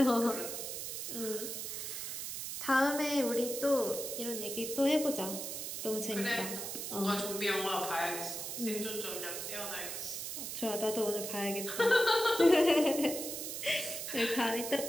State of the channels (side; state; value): right; noise; hiss, 5 dB below the sound